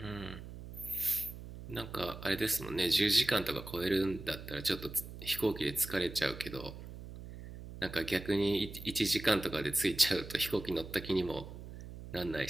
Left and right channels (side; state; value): right; noise; hum, 12 dB below the sound